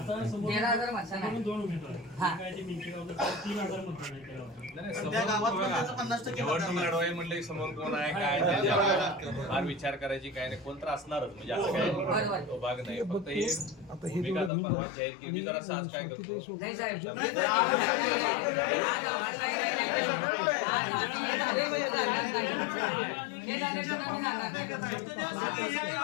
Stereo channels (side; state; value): right; drops out; at 14.5 s